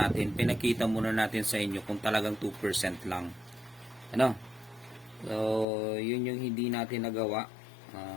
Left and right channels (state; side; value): drops out; right; at 5.7 s